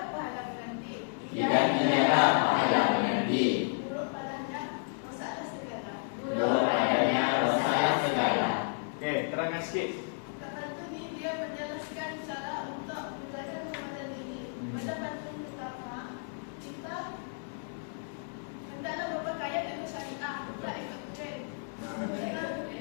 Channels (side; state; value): right; silent; 56 dB below the other